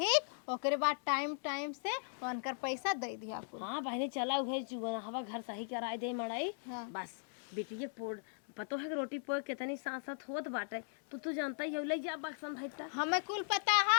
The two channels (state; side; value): silent; right; digital silence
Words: ओकरे बाद टाइम से उनकर पैसा दे दिया आपको। हाँ बहनी चला उहे हवा घर सही कराए दे मड़ाई। हाँ। बस बिटिया पोड़ पतो है कि रोटी पोड़ कितनी सांसत होत बाटे, तू जानता ही है, ले जा बाक्सन धैता। हमें कुल पता